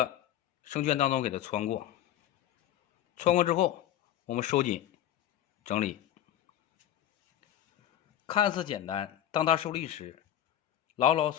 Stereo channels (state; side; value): quieter; right; 11.8 dB